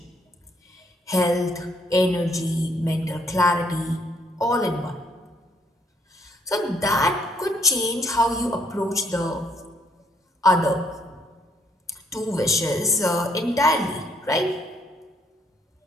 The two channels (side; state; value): both; normal; correlation 0.69